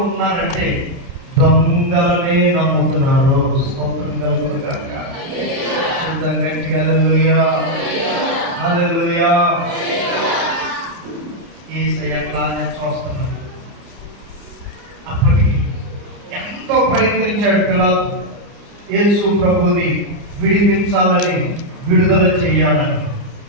దొంగలనే నమ్ముతున్నారు. స్తోత్రం కలుగును గాక. గట్టిగా హల్లెలూయా, హల్లెలూయా. యేసయ్య అట్లానే చూస్తున్నాడు. అప్పటికి ఎంతో ప్రయత్నించాడు పిలాతు యేసు ప్రభుని విడిపించాలని, విడుదల చేయాలని.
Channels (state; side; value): late; left; 29 ms